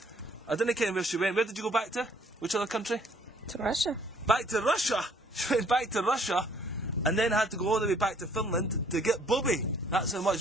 I didn't care where she went. Where did you go back to? Which other country? To Russia. Back to Russia? She went back to Russia. And then had to go all the way back to Finland to get Bobby. That's how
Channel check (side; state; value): both; normal; correlation 0.62